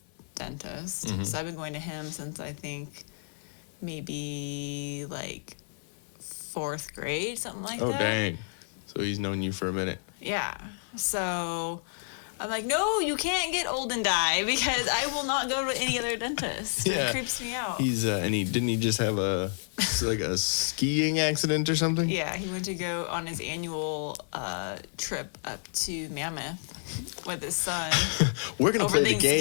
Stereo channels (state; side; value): silent; right; 58 dB below the other